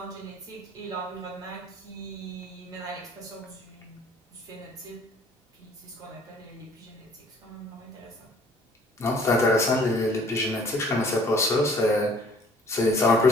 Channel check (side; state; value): both; normal; correlation 0.56